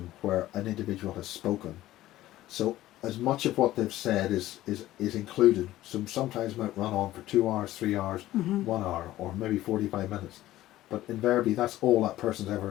where an individual has spoken. So as much of what they've said is included. So sometimes it might run on for 2 hours, 3 hours, Mm-hmm. 1 hour, or maybe 45 minutes. But invariably that's all that person's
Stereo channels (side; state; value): right; quieter; 15.2 dB